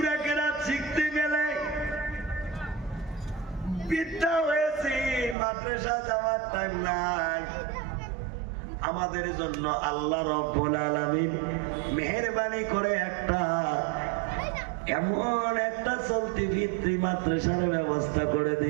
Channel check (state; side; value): drops out; left; at 5.4 s